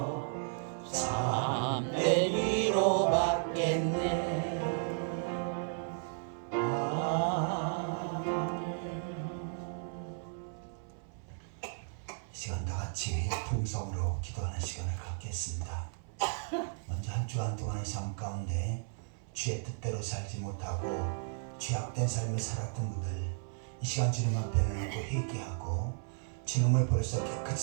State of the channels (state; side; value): silent; left; 55 dB below the other